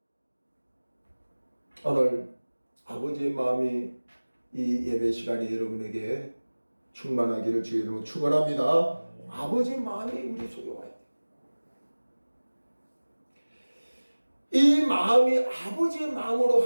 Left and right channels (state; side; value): inverted; both; correlation -1.00